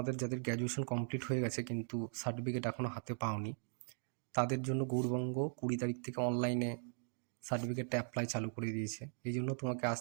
যাদের গ্র্যাজুয়েশন কমপ্লিট হয়ে গেছে কিন্তু সার্টিফিকেট এখনও হাতে পাওনি, তাদের জন্য গৌড়বঙ্গ 20 তারিখ থেকে অনলাইনে সার্টিফিকেটটা অ্যাপ্লাই চালু করে দিয়েছে। এই জন্য তোমাকে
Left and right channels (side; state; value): left; silent; 52 dB below the other